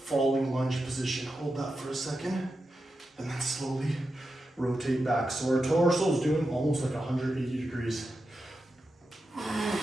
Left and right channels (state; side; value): normal; both; correlation 0.89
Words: lunge position. Hold that for a second, and then slowly rotate back. So our torso is doing almost like 180 degrees.